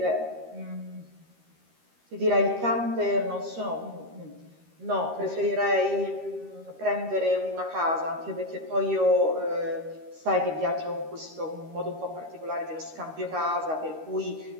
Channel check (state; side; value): late; left; 13 ms